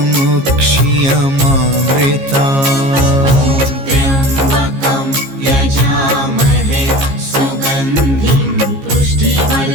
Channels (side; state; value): left; late; 15 ms